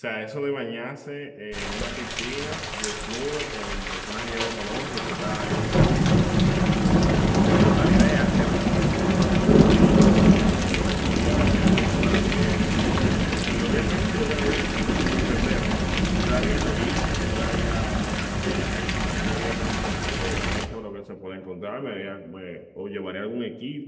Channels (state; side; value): identical; both; correlation 1.00